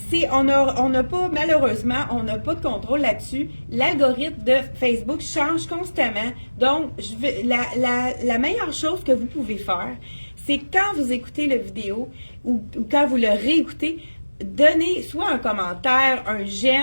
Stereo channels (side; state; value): both; inverted; correlation -1.00